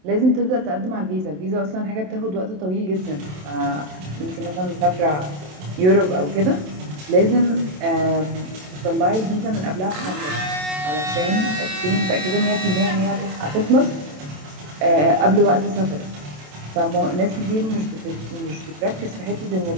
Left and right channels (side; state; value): left; late; 27 ms